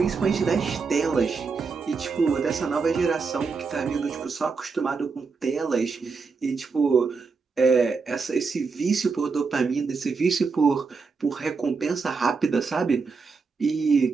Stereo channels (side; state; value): left; quieter; 4.8 dB